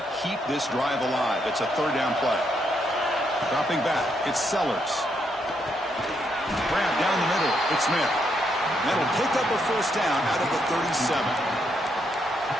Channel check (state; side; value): normal; both; correlation 0.77